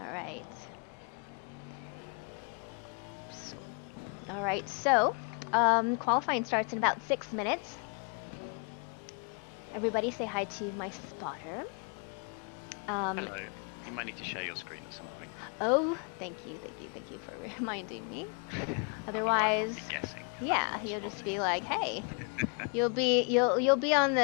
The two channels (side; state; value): right; quieter; 38.8 dB